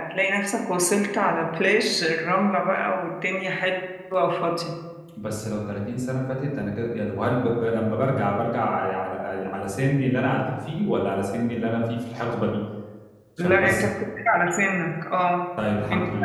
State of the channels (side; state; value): both; identical; correlation 1.00